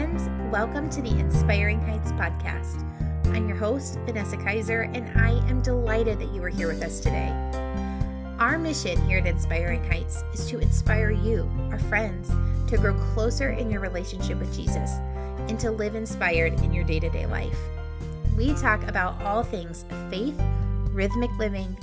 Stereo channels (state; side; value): identical; both; correlation 1.00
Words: friends. Welcome to the Inspiring Heights podcast. I'm your host, Vanessa Kaiser, and I am delighted that you are here with us today. Our mission here at Inspiring Heights is to inspire you, our friends, to grow closer in your relationship with Jesus and to live inspired in your day-to-day life. We talk about all things faith, rhythmic living,